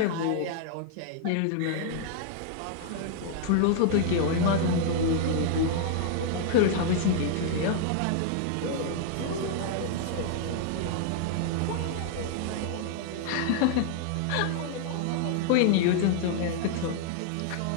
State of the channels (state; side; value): different; both; correlation -0.01